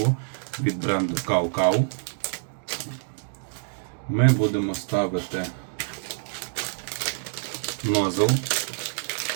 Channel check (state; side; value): silent; left; 61 dB below the other